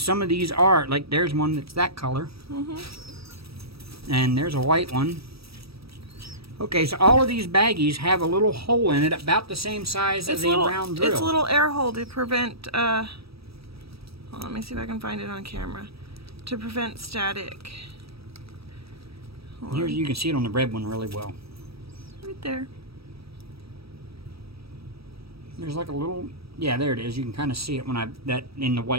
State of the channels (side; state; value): left; late; 0.77 ms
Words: of these are, like there's one that's that color. And there's a white one. Okay, so all of these baggies have a little hole in it about the same size as a round drill. It's a little air hole to prevent, hold on, let me see if I can find it on camera. To prevent static. Here you can see it on the red one really well. Right there. There's like a little, yeah, there it is. You can kind of see it when that in the